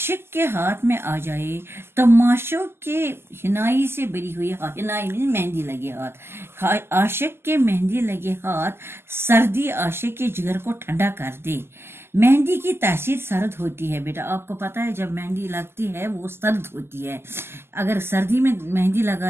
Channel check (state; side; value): late; left; 0.12 ms